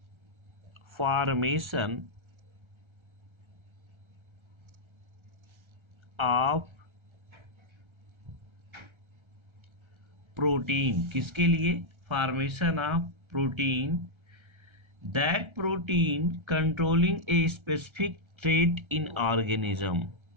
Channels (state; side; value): late; left; 1.3 ms